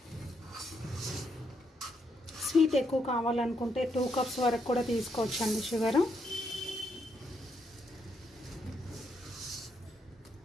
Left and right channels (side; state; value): both; normal; correlation 0.77